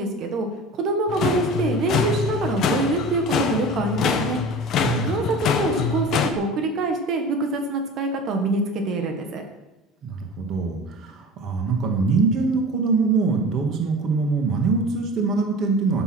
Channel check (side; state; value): both; normal; correlation 0.37